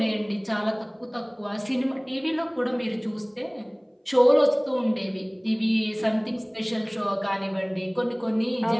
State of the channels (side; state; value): both; identical; correlation 1.00